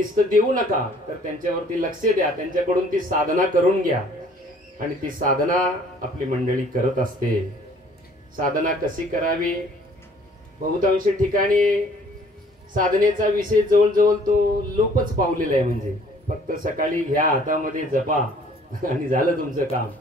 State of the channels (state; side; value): normal; both; correlation 0.57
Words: देऊ नका, तर त्यांच्यावरती लक्ष द्या, त्यांच्याकडून ती साधना करून घ्या. आणि ती साधना आपली मंडळी करत असते. साधना कशी करावी? बहुतांश ठिकाणी साधनेचा विषय जवळजवळ तो लोपच पावलेला आहे. म्हणजे फक्त सकाळी घ्या हातामध्ये जपा आणि झालं तुमचं काम.